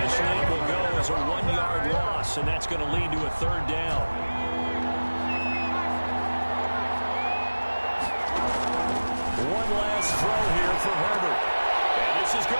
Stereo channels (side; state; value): both; inverted; correlation -1.00